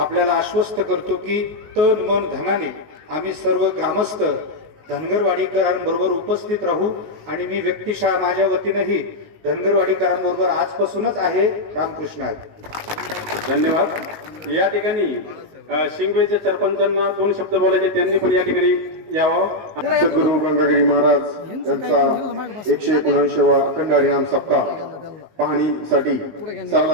आश्वस्त करतो की तन मन धनाने आम्ही सर्व ग्रामस्थ धनगरवाडीकरांबरोबर उपस्थित राहू आणि मी व्यक्तिशः माझ्या वतीनंही धनगरवाडीकरांबरोबर आजपासूनच आहे. रामकृष्ण आहे. धन्यवाद. या ठिकाणी शिंगवेच्या सरपंचांना 2 शब्द बोलायचे, त्यांनी पण या ठिकाणी यावं. सद्गुरू गंगागिरी महाराज यांचा 179वा अखंड हरिनाम सप्ताह पाहणीसाठी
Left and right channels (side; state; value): left; late; 19 ms